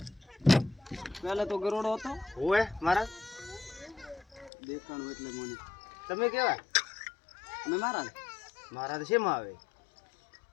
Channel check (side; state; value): right; drops out; at 4.5 s